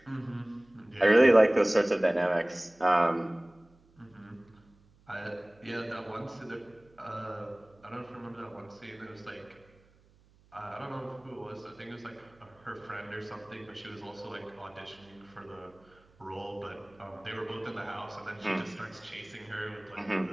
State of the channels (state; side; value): noise; right; hum, 30 dB below the sound